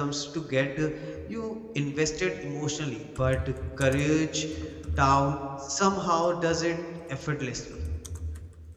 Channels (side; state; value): both; identical; correlation 1.00